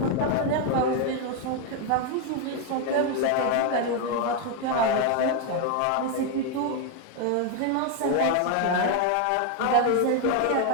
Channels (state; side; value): different; both; correlation 0.01